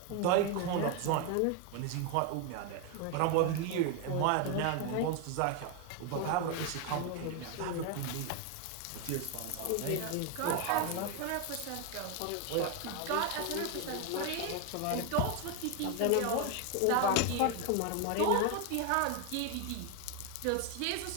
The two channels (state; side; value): different; both; correlation 0.01